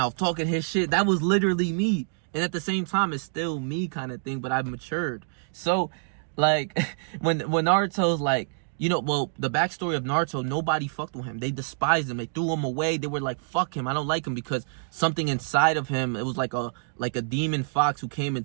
talking his shit. That was literally me. And at the same time, it's still me kind of thing, but I've matured. So, like, when Naruto's like, you know, well, the backstory of Naruto, nobody fucked with him. They despised him. They threw him away. They were like, fuck him. I don't like him because something inside of him, it was like a demon fox who came and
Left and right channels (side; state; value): left; silent; digital silence